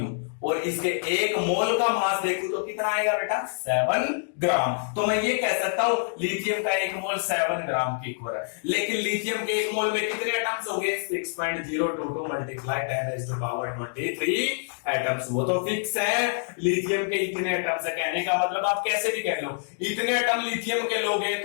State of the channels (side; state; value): right; silent; digital silence